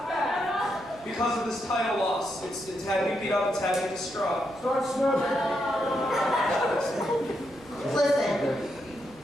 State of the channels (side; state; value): right; noise; rumble, 24 dB below the sound